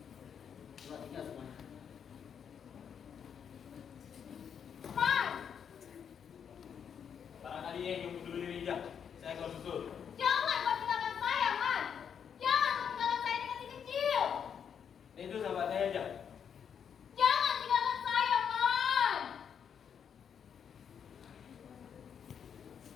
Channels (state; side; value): quieter; right; 7.7 dB